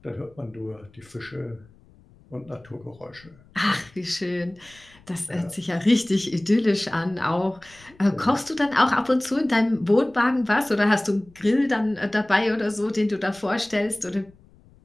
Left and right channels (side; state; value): left; noise; rumble, 27 dB below the sound